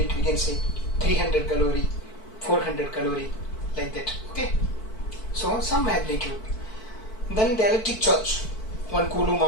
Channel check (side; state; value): right; late; 4.6 ms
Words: we can say 300 calorie, 400 calorie, like that. Okay. So some magnitude. Then the electric charge. 1 coulomb